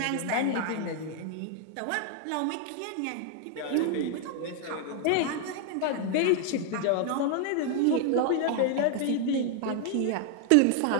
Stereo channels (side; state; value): both; different; correlation 0.00